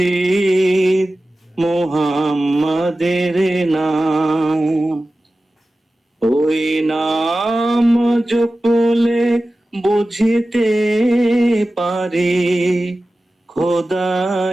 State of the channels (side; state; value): both; normal; correlation 0.95